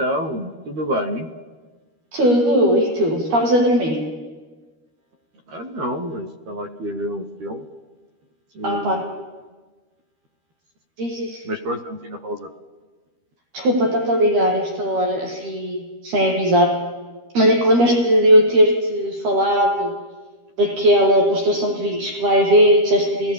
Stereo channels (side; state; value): left; late; 13 ms